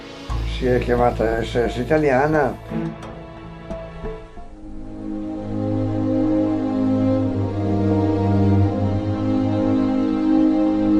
si è chiamata SS italiana.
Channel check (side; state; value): both; identical; correlation 1.00